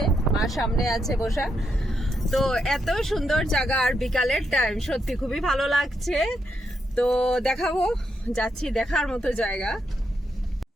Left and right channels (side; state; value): both; normal; correlation 0.81